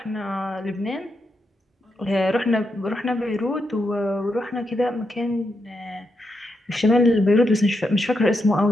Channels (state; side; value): normal; both; correlation 0.83